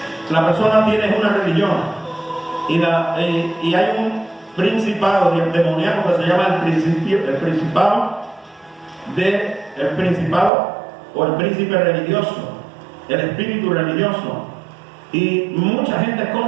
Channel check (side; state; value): left; drops out; at 10.5 s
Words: La persona tiene una religión y hay un principado demoníaco que se llama el principado o el príncipe religioso, el espíritu religioso. Y mucha gente es